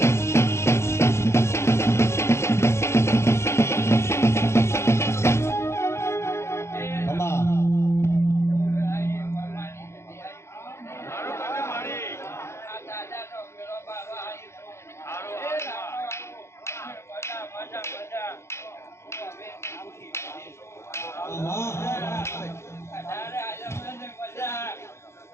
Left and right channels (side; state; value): right; late; 0.13 ms